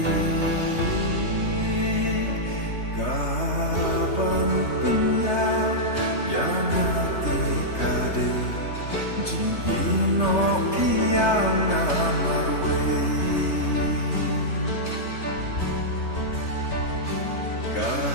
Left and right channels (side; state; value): right; late; 3.3 ms